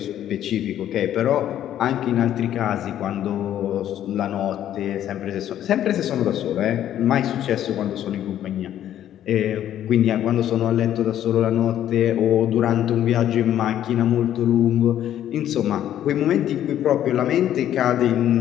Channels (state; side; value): quieter; right; 11.3 dB